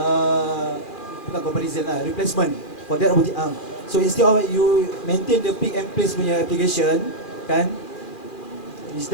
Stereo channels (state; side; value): late; right; 2.4 ms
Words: bukan comparison lah, replacement for that robotic arm. So instead of you maintain the pick and place punya application, kan, it's